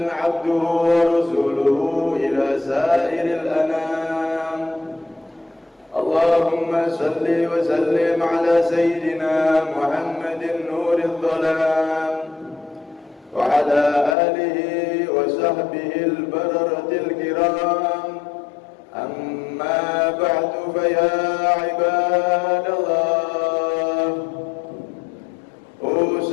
عبده ورسوله إلى سائر الأنام. اللهم صل وسلم على سيدنا محمد نور الظلام وعلى آله وصحبه البررة الكرام. أما بعد فيا عباد الله،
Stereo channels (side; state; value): right; drops out; at 14.2 s